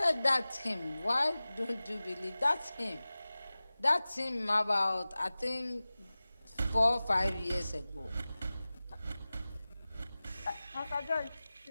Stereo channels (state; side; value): inverted; both; correlation -0.97